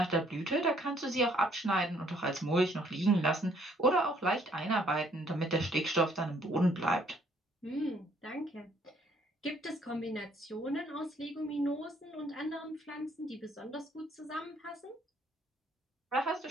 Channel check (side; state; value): both; normal; correlation 0.64